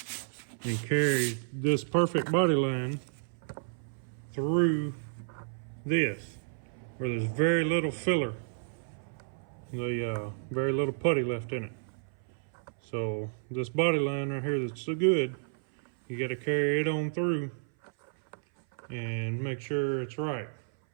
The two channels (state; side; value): silent; left; 57 dB below the other